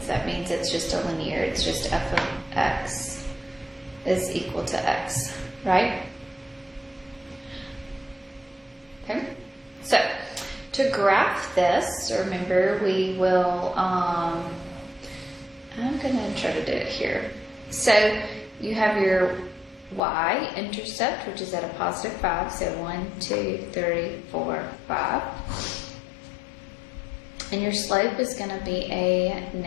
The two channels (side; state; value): right; drops out; at 20.0 s